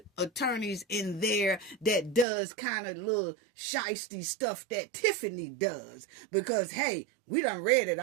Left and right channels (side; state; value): left; drops out; at 2.2 s